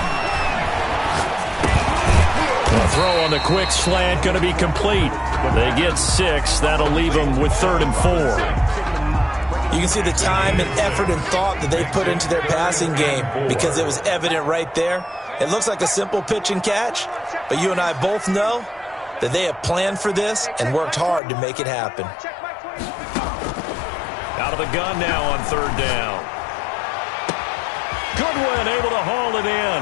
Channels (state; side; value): drops out; right; at 21.2 s